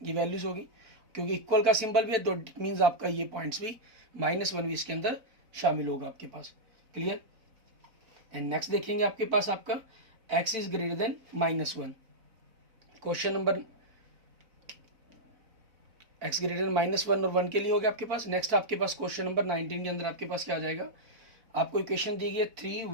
ये वैल्यूज होगी, क्योंकि इक्वल का सिंबल भी है, तो इट मीन्स आपका ये पॉइंट्स भी -1 भी इसके अंदर शामिल होगा आपके पास। क्लियर, एंड नेक्स्ट देखेंगे आपके पास आपका x is greater then -1। Question number x greater then -1 और 1 के लिए हो गया आपके पास। नेक्स्ट आपके पास क्वेश्चन नंबर 19 के अंदर आपके पास क्या आ जाएगा, आपको इक्वेशन दी गई है 3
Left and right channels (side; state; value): left; late; 4.0 ms